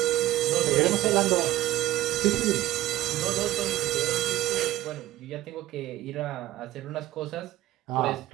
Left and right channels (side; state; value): left; quieter; 15.3 dB